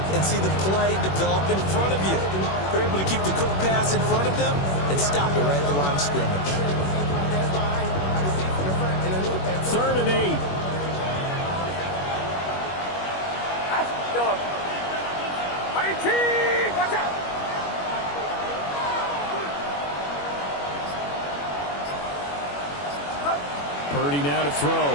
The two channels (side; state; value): right; late; 21 ms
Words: and see the play develop in front of you. You're able to keep the quick pass in front of them and stop it right at the line of scrimmage. 3rd and 8. Watch out! Purdy now to throw.